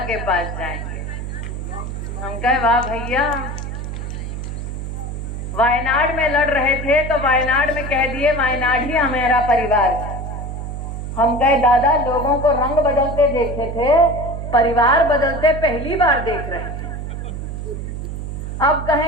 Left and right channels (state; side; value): noise; right; hum, 6 dB below the sound